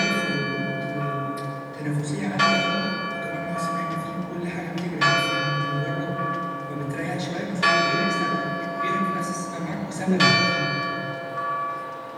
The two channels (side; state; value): both; identical; correlation 1.00